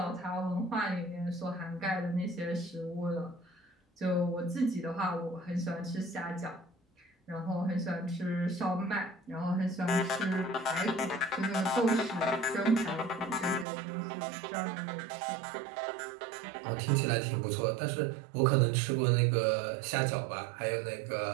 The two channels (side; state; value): left; drops out; at 13.7 s